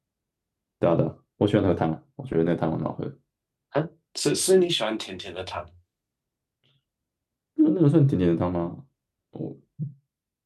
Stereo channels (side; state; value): both; identical; correlation 1.00